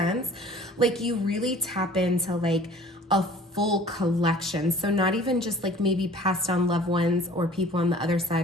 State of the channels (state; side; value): normal; both; correlation 0.48